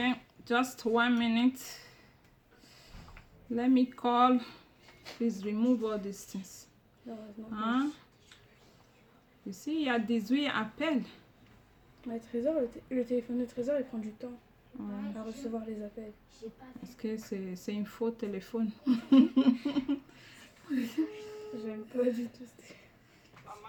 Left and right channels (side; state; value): both; identical; correlation 1.00